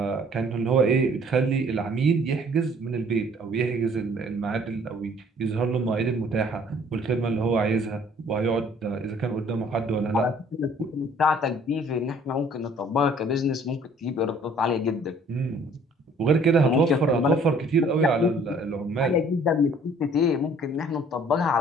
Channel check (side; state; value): both; normal; correlation 0.56